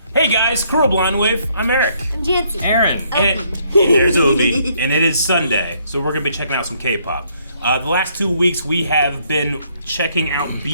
Hey guys, Cruel Blind Wave. I'm Eric. I'm Janci Aaron. And there's Obi. And it is Sunday, so we're gonna be checking out some K-pop. The last 2 weeks we have been checking out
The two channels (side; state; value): both; inverted; correlation -0.69